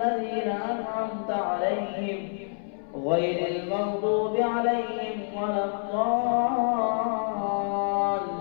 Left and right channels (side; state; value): right; silent; 60 dB below the other